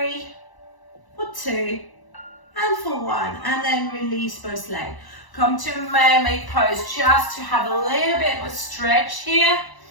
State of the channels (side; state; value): right; late; 1.0 ms